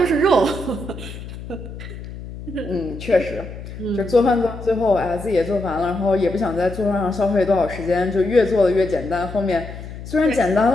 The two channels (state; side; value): noise; left; hum, 12 dB below the sound